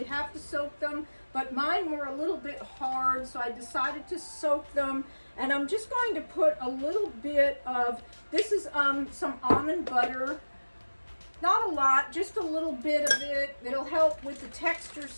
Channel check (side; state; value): both; inverted; correlation -1.00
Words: have to soak them, but mine were a little bit hard, so I decided to soak them. And I'm just going to put a little bit of, this is some almond butter. Not a lot, just a little bit of it. It'll help with the texture